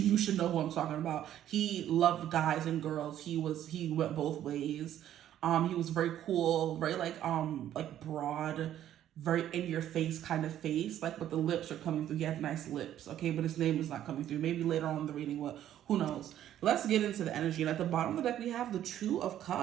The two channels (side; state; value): left; quieter; 11.5 dB